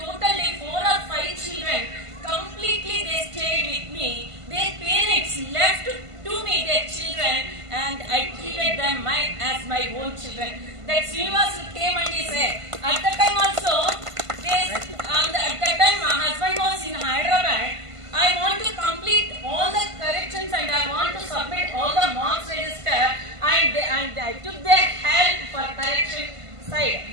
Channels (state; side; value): late; left; 1.5 ms